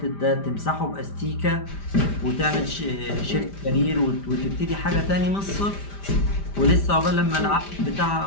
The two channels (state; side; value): late; right; 5.0 ms